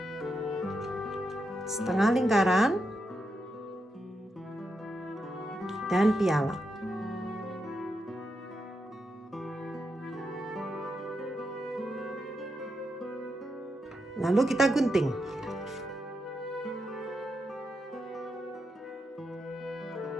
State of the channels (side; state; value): both; normal; correlation 0.85